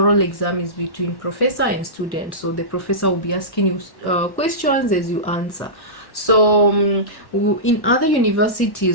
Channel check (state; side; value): late; right; 1.1 ms